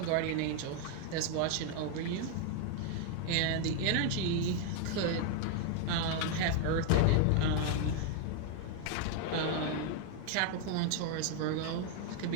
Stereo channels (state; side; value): different; both; correlation 0.00